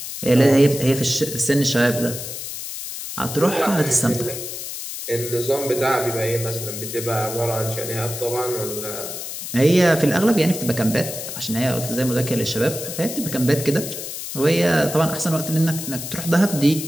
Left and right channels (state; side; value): noise; left; hiss, 8 dB below the sound